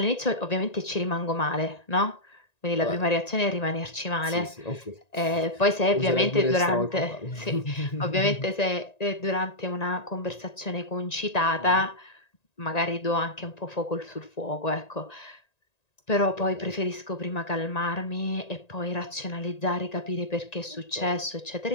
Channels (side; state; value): right; late; 1.9 ms